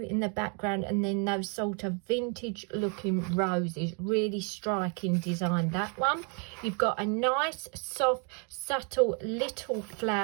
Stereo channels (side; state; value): left; quieter; 37.9 dB